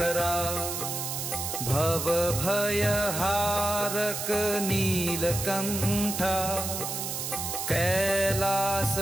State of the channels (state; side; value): noise; right; hiss, 4 dB below the sound